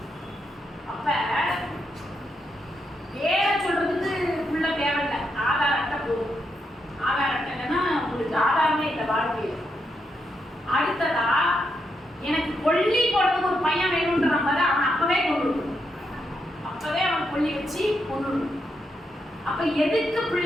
அப்ப பேரை சொல்றதுக்கு பிள்ளை தேவையில்லை, ஆதார் அட்டை போதும். ஆதார் அட்டை இல்லைன்னா உங்களுக்கு ஆதாரமே இல்லை வாழ்க்கையில். அடுத்ததா எனக்கு கொல்லி போடுறதுக்கு ஒரு பையன் வேணும்ன்ற மாதிரி அவன் அப்பவே கொண்டு வரணும், அப்பவே அவன் கொல்லி வச்சு கொண்டு வரணும். அப்ப எதுக்கு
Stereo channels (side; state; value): both; normal; correlation 0.82